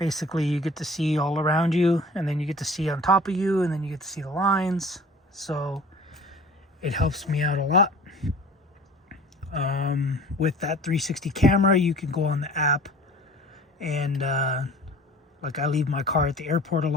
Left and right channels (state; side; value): normal; both; correlation 0.45